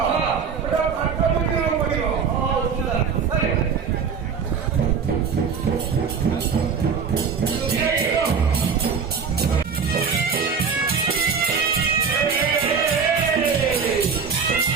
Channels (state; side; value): quieter; left; 6.1 dB